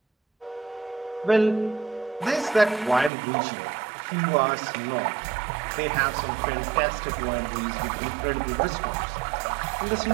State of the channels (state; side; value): drops out; left; at 3.1 s